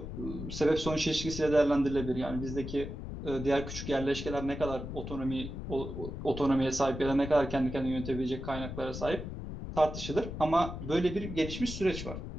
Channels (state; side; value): noise; left; rumble, 7 dB below the sound